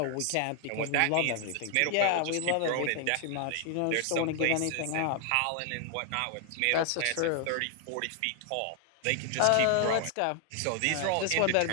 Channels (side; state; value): both; different; correlation 0.00